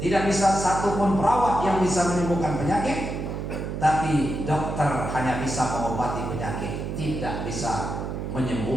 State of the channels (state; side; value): noise; right; hum, 5 dB below the sound